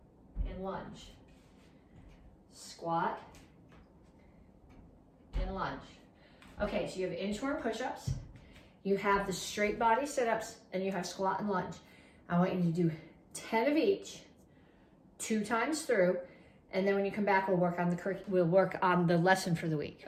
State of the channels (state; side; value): identical; both; correlation 1.00